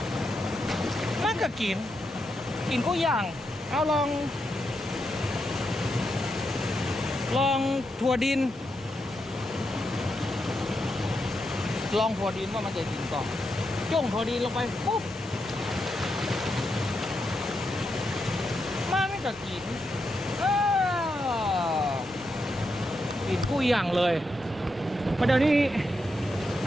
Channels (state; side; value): normal; both; correlation 0.84